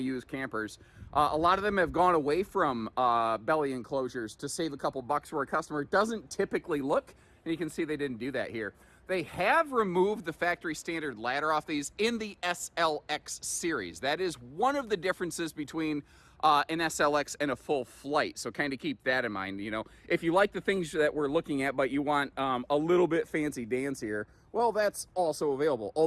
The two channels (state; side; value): identical; both; correlation 1.00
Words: use, campers, a lot of them have gone away from belly enclosures to save a couple bucks where a customer doesn't typically look. And you can see they didn't do that here. They have removed the factory standard ladder off these in the SLX series. That is one of the differences between an SLX and a full flight. So kind of keep that in mind. You know, if you like the things that we're looking at, but you want a little bit fancy dance here, well, that's also available.